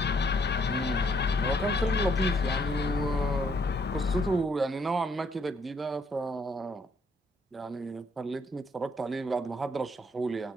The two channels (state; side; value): normal; both; correlation 0.68